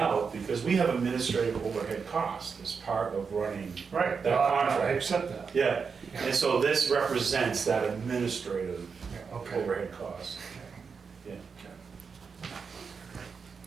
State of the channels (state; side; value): quieter; left; 5.6 dB